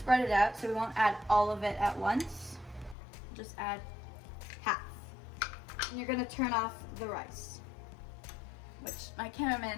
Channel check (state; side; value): drops out; right; at 3.0 s